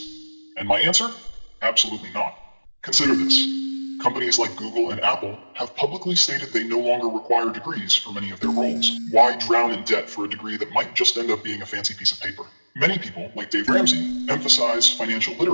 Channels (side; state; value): both; inverted; correlation -1.00